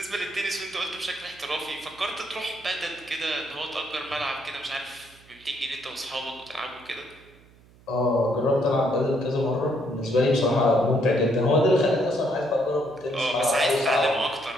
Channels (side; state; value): right; noise; hum, 26 dB below the sound